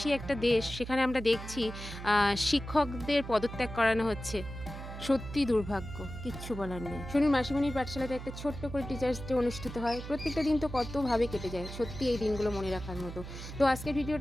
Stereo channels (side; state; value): right; noise; hum, 10 dB below the sound